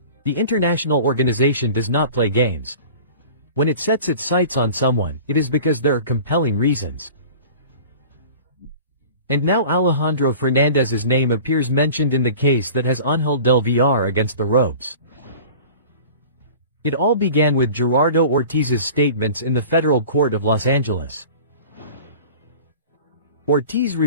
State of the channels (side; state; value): both; inverted; correlation -0.41